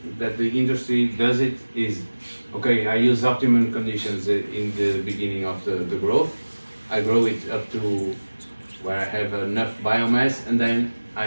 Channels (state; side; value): inverted; both; correlation -1.00